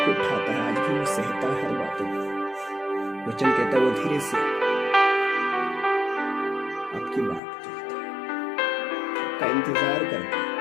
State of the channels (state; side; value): drops out; right; at 7.4 s